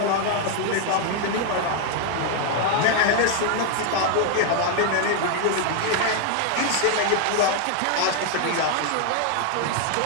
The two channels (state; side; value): different; both; correlation 0.00